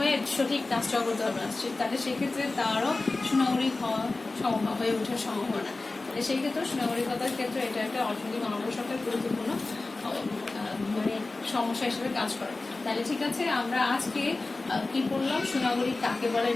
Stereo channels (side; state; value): right; quieter; 3.3 dB